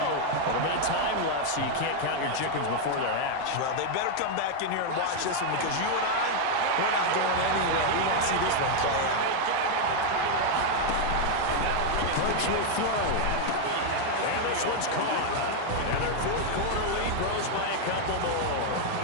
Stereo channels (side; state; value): both; different; correlation 0.01